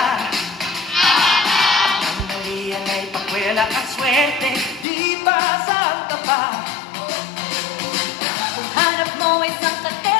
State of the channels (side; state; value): right; drops out; at 4.9 s